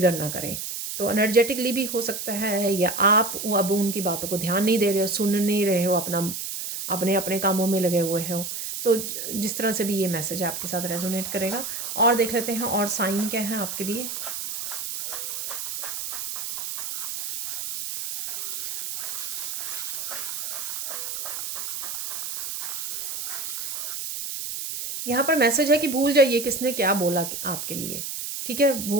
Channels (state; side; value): noise; right; hiss, 5 dB below the sound